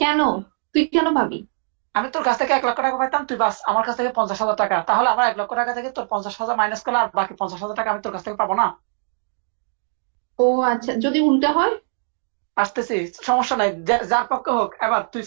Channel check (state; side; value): silent; left; digital silence